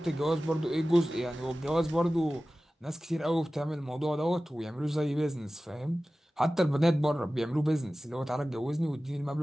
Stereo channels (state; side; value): normal; both; correlation 0.96